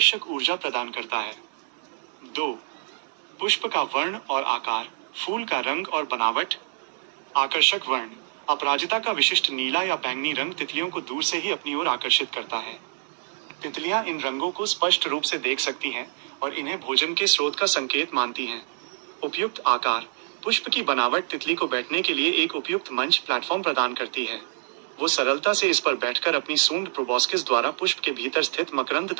ऊर्जा प्रदान करता है। 2. पुष्प का वर्ण और आकार, फूल का रंग और बनावट। आकर्षक वर्ण, अपराजिता का विशिष्ट नीला या बैंगनी रंग तितलियों को दूर से ही अपनी ओर आकर्षित करता है। तितलियां इन रंगों को स्पष्ट रूप से देख सकती हैं और इन्हें भोजन के स्रोत का संकेत मानती हैं। उपयुक्त आकार, पुष्प की बनावट तितली को बैठने के लिए एक उपयुक्त मंच प्लेटफॉर्म प्रदान करती है। वो सरलता से इस पर बैठकर अपनी सूंड प्रोबोस्किस द्वारा पुष्प के भीतर स्थित मकरंद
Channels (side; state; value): left; silent; digital silence